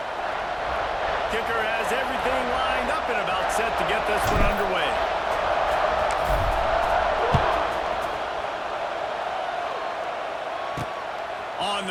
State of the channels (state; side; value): identical; both; correlation 1.00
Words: Kicker has everything lined up and about set to get this one underway. On